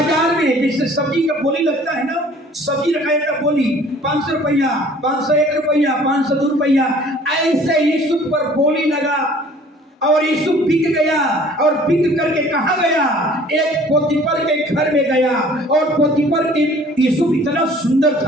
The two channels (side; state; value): both; normal; correlation 0.52